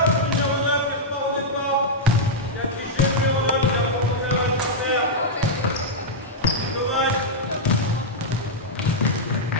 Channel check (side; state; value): both; normal; correlation -0.06